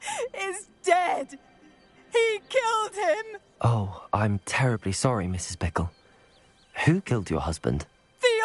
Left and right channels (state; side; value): identical; both; correlation 1.00